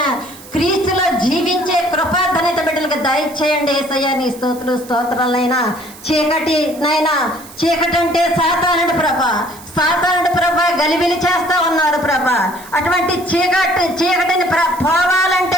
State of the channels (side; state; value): right; noise; hiss, 19 dB below the sound